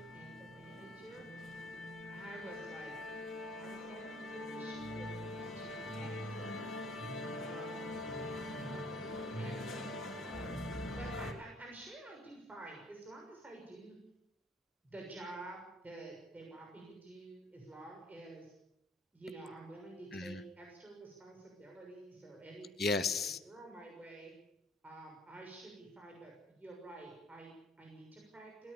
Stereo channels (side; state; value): both; normal; correlation 0.57